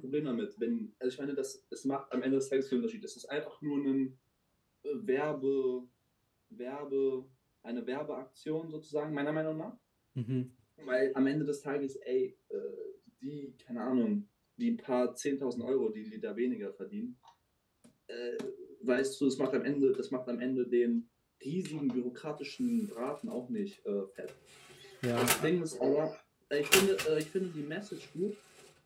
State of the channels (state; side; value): identical; both; correlation 1.00